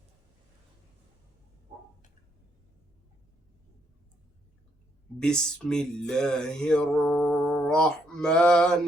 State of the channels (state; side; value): normal; both; correlation 0.74